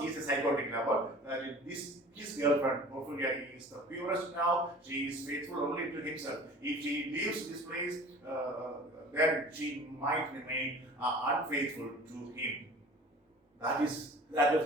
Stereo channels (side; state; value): both; normal; correlation 0.44